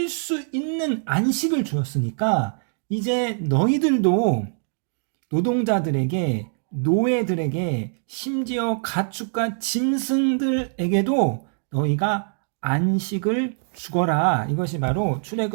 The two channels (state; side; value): silent; left; digital silence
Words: 수 있는 안식을 주었으니까 이제 너희들도 노동자들에게, 노예들에게, 심지어 가축과 짐승들에게도 너희가 안식을 주거라. 이것이 바로